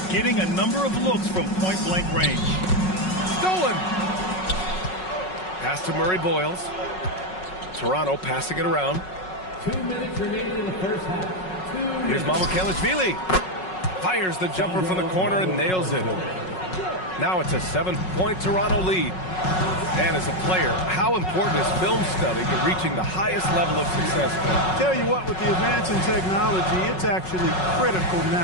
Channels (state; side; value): late; right; 5.4 ms